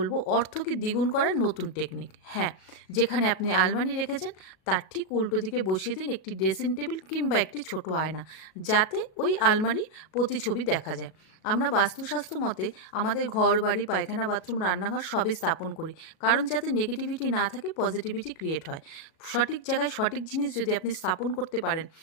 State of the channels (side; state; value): right; late; 37 ms